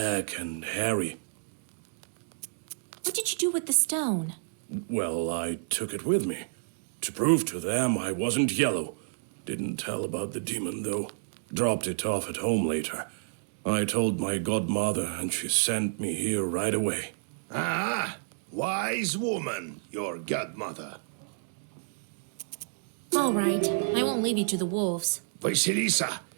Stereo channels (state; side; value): silent; left; digital silence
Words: and hairy. What did you do with the stone? Well, I took it with me. To prove to them I wasn't yellow. Didn't tell about the demon, though. Dropped it off at home later. I told my godmother, and she sent me here right away. Ah, wise woman, your godmother. All right, I won't leave you to the wolves. Vasilisa,